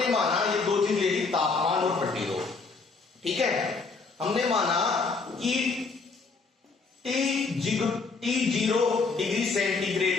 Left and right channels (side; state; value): right; quieter; 4.4 dB